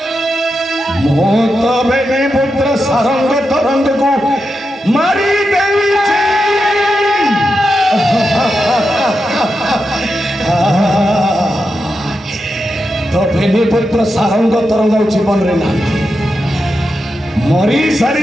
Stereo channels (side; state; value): both; normal; correlation 0.88